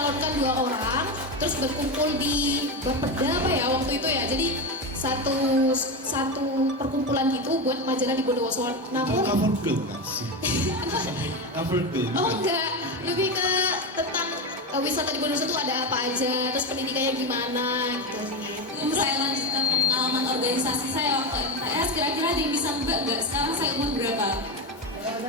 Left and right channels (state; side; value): normal; both; correlation 0.15